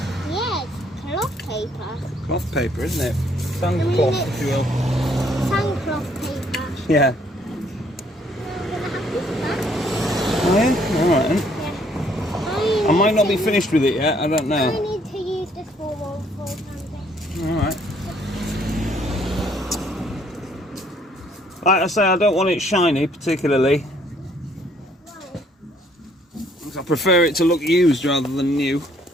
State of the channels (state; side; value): normal; both; correlation 0.65